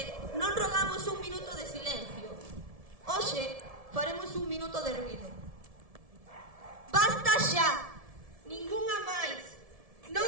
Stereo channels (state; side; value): late; left; 1.7 ms